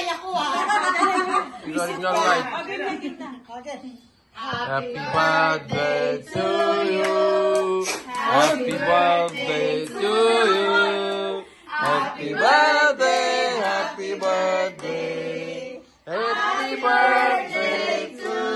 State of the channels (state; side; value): identical; both; correlation 1.00